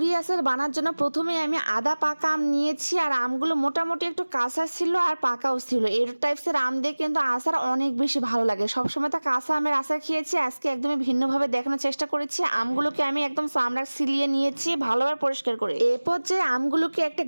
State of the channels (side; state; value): both; inverted; correlation -1.00